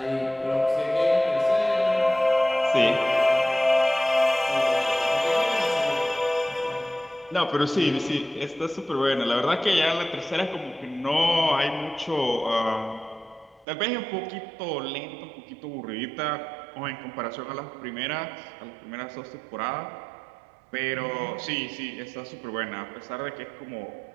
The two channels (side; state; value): left; drops out; at 13.7 s